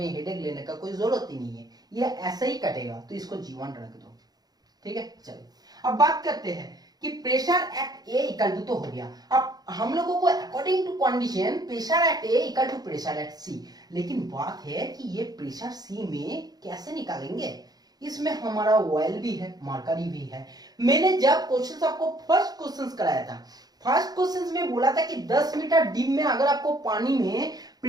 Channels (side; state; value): left; late; 0.19 ms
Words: हेडेक लेने का कोई जरूरत ही नहीं है, ये ऐसा ही कटेगा, तो इसको G1 रख दो, ठीक है। चलो अब बात करते हैं कि pressure at A equal to तो हो गया। अब हम लोगों को according to condition pressure at A equal to pressure at C, लेकिन बात है कि ये प्रेशर सी में कैसे निकालेंगे। इसमें हमारा ऑयल भी है, मरकरी भी है। मैंने जब क्वेश्चन आपको फर्स्ट क्वेश्चन कराया था, फर्स्ट क्वेश्चन में बोला था कि 10 मीटर डीप में अगर आपको पानी में